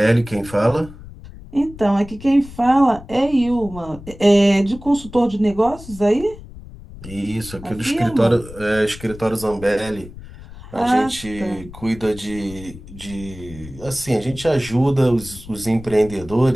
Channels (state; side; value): noise; left; rumble, 16 dB below the sound